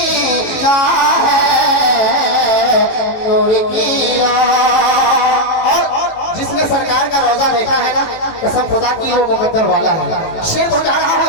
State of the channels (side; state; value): right; late; 18 ms